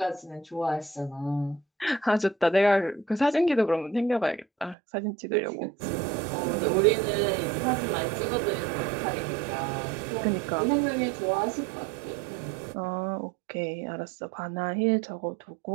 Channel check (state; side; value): drops out; left; at 4.8 s